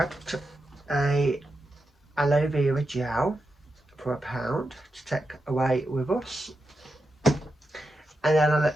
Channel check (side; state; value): both; normal; correlation 0.88